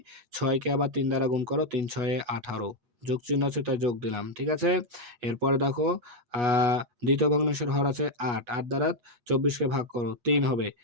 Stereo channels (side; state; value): left; late; 8.2 ms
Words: 6 কে আবার 3 দ্বারা গুণ করো, 3 6 এ 18, যোগ চিহ্ন আছে, তাই যোগ দিলাম। ঠিক আছে? এরপরে দেখো দ্বিতীয় ভগ্নাংশের হর আছে 8, 8 দ্বারা 24 কে ভাগ করো, 3 হবে,